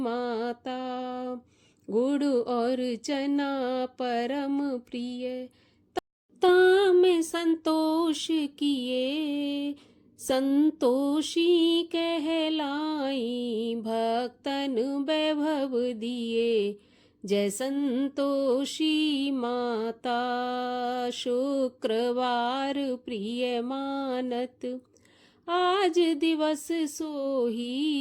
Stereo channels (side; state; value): both; identical; correlation 1.00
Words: गुड़ और चना परम प्रिय, में संतोष किए, संतोषी कहलाई भक्तन वैभव दिए। जय संतोषी माता शुक्रवार प्रिय मानत। आज दिवस